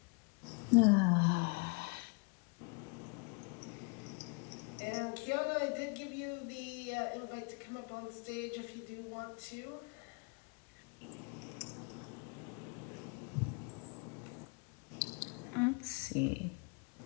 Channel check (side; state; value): right; quieter; 31.2 dB